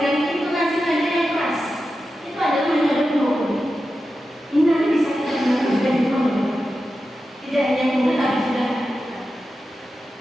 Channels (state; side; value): normal; both; correlation 0.91